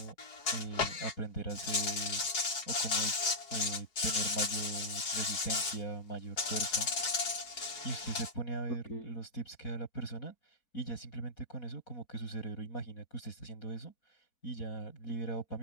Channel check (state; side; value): late; right; 4.8 ms